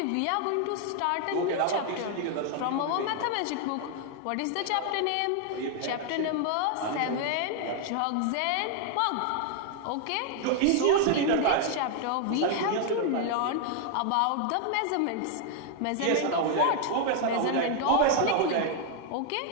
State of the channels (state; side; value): different; both; correlation 0.00